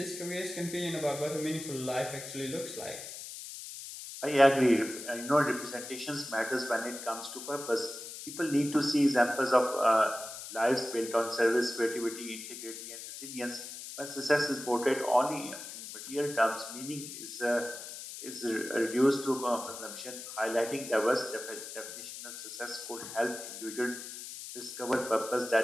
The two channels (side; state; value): left; noise; hiss, 10 dB below the sound